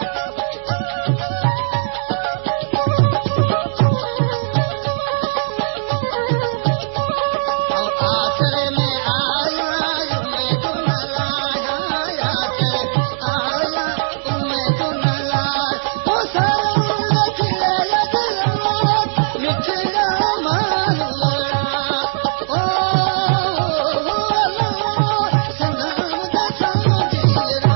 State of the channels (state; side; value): silent; left; digital silence